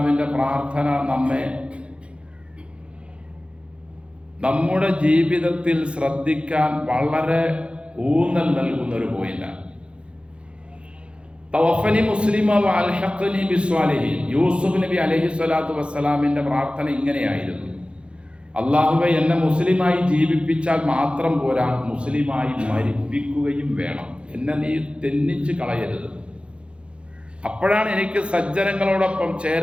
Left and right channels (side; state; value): left; late; 0.058 ms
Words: പ്രാർത്ഥന നമ്മെ നമ്മുടെ ജീവിതത്തിൽ ശ്രദ്ധിക്കാൻ വളരെ ഊന്നൽ നൽകുന്ന ഒരു പോയിന്റാണ്. തവഫനി മുസ്ലിമ വഅൽഹഖ്നി ബിസ്വാലിഹീൻ. യൂസുഫ് നബി അലൈഹിസ്സലാത്തു വസ്സലാമിൻ്റെ പ്രാർത്ഥന ഇങ്ങനെയായിരുന്നു: അല്ലാഹുവേ, എന്നെ മുസ്ലിമായി ജീവിപ്പിച്ചാൽ മാത്രം പോരാ, മുസ്ലിമായി മരിപ്പിക്കുകയും വേണം. എന്നെ നീ തെന്നിച്ച് കളയരുത്. അപ്പോഴാണ് എനിക്ക് സജ്ജനങ്ങളോടൊപ്പം